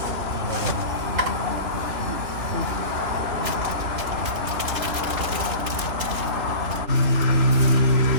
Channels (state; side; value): late; left; 3.6 ms